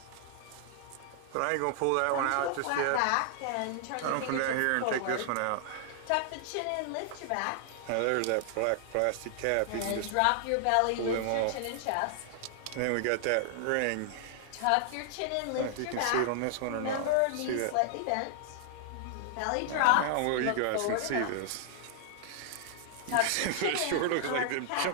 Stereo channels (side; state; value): both; different; correlation -0.01